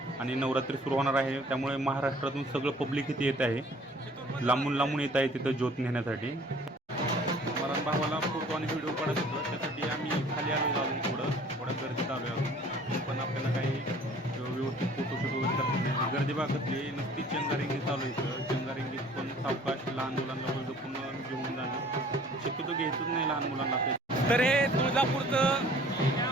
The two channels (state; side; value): normal; both; correlation 0.52